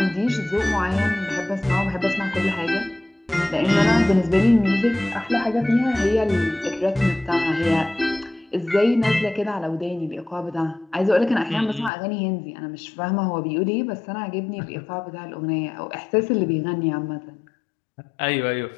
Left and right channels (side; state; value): right; drops out; at 11.9 s